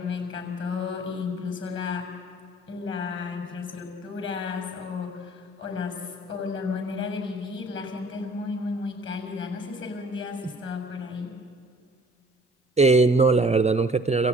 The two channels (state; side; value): normal; both; correlation 0.53